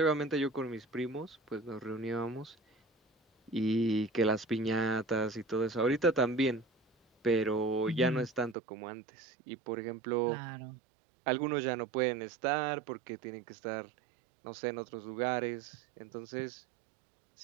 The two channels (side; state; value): left; drops out; at 8.6 s